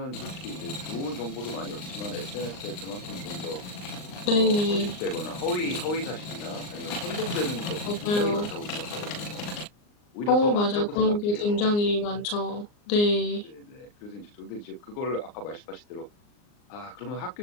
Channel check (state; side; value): late; right; 39 ms